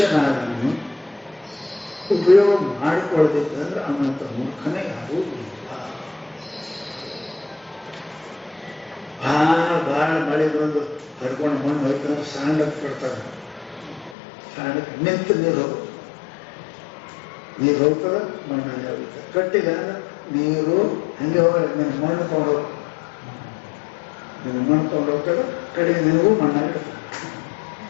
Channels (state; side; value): drops out; right; at 14.2 s